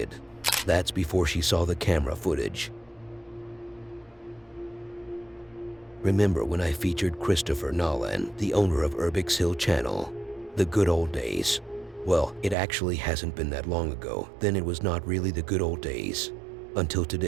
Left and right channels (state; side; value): drops out; left; at 12.6 s